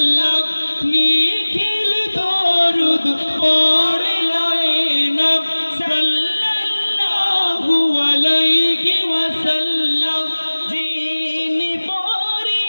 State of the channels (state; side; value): inverted; both; correlation -1.00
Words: নিখিল দরুদ পড়ল এ নাম সাল্লাল্লাহু আলাইহি ওয়াসাল্লাম যিনি পড়ি